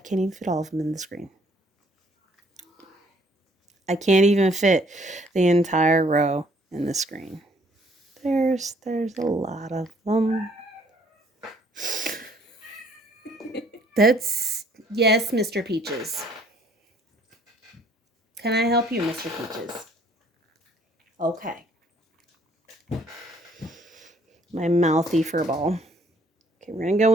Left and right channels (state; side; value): normal; both; correlation 0.62